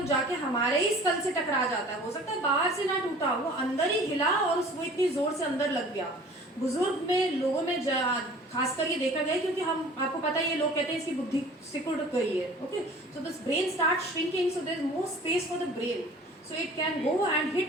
जाके हमारे ही स्कल से टकरा जाता है। हो सकता है बाहर से ना टूटा, वो अंदर ही हिला और वो इतनी जोर से अंदर लग गया। बुजुर्ग में, लोगों में खासकर ये देखा गया है, क्योंकि हम, आपको पता है ये लोग कहते हैं इसकी बुद्धि सिकुड़ गई है, okay. So this brain start shrinking, so there is more space for the brain, so it can go and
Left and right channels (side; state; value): both; normal; correlation 0.47